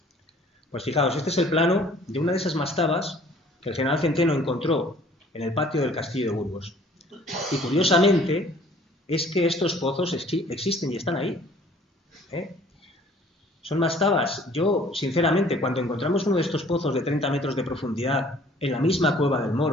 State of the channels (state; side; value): normal; both; correlation 0.55